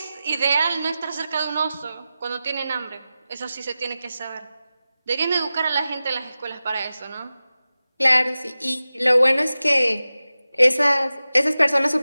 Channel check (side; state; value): both; inverted; correlation -0.95